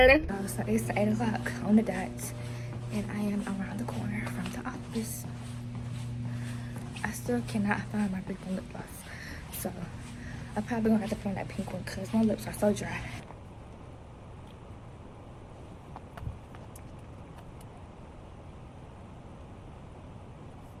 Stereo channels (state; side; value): identical; both; correlation 1.00